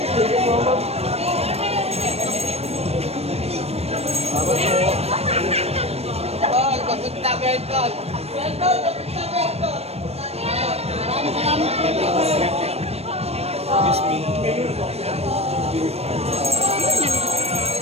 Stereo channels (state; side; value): late; left; 0.30 ms